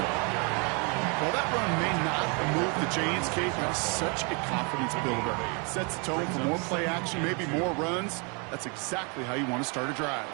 that run may not move the chains, Kate, that's such a confidence builder. Sets the tone for more play action, maybe more runs. That's exactly how you want to start a drive.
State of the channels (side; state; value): left; quieter; 33.8 dB